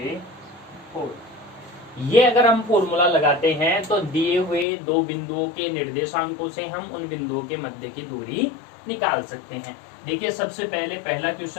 होल। ये अगर हम फॉर्मूला लगाते हैं तो दिए हुए दो बिंदुओं के निर्देशांकों से हम उन बिंदुओं के मध्य की दूरी निकाल सकते हैं। देखिए सबसे पहले पहला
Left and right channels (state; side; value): drops out; right; at 4.7 s